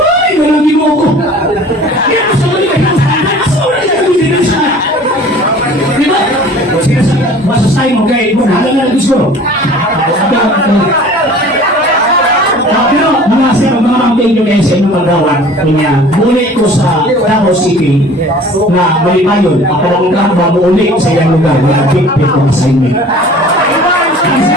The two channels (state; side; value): normal; both; correlation 0.46